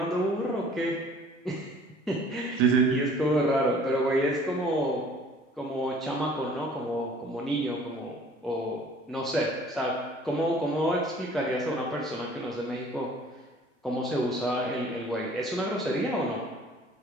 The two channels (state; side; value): normal; both; correlation 0.52